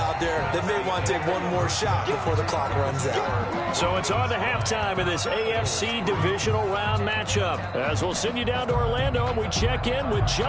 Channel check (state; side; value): identical; both; correlation 1.00